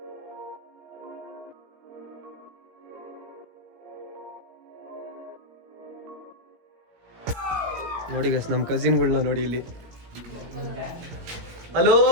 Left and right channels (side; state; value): left; late; 17 ms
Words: ನೋಡಿ ಗೈಸ್, ನಮ್ಮ ಕಸಿನ್ಗಳನ್ನ ನೋಡಿ ಇಲ್ಲಿ. ಹಲೋ